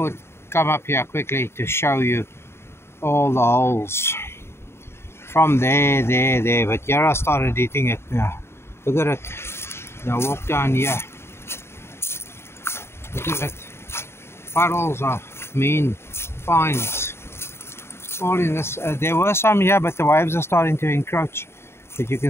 come up here quickly to show you all the holes. From there, but here I started eating it now. Look at it. Now walk down here. Look at it. Puddles of mean finds. All in this. There were some here, but the waves are starting to encroach. But you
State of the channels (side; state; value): right; late; 0.12 ms